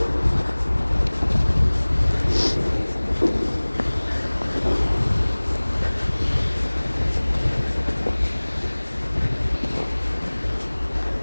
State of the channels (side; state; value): both; inverted; correlation -1.00